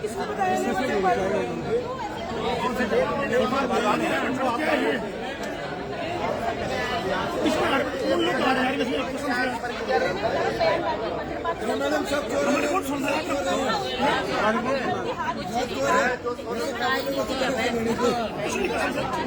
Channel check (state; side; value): identical; both; correlation 1.00